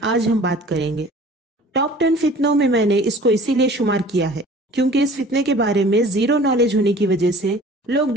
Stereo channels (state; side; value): normal; both; correlation 0.47